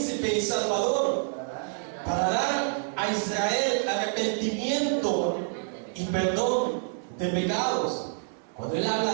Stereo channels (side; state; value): left; silent; digital silence